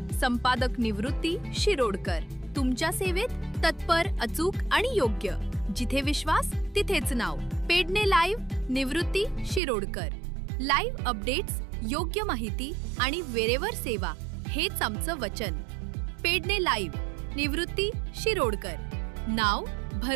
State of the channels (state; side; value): drops out; left; at 9.6 s